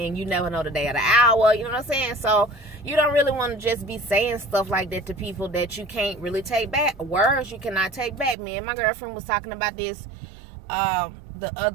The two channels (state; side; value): drops out; left; at 8.3 s